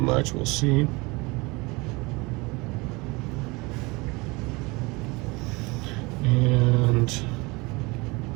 we'll see. And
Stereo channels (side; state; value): left; quieter; 25.1 dB